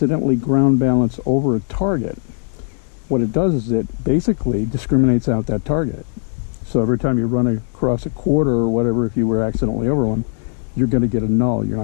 ground balance over a target, what it does is it basically discriminates out that target. So every time you run across a quarter or whatever, if you were accidentally over one, you're going to get a null. You're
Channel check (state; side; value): silent; right; digital silence